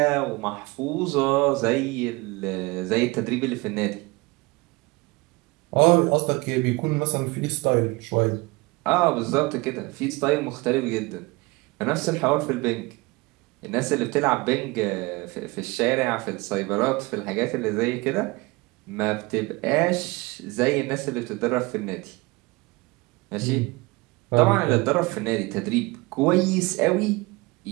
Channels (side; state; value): left; quieter; 24.1 dB